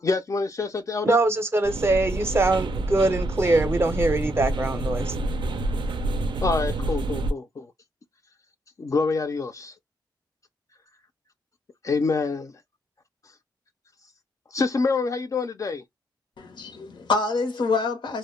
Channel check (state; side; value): normal; both; correlation 0.74